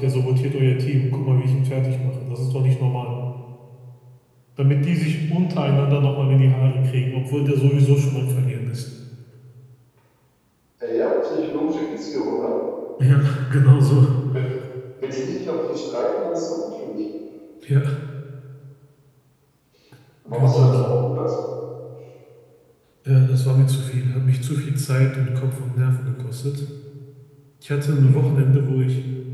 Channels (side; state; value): both; identical; correlation 1.00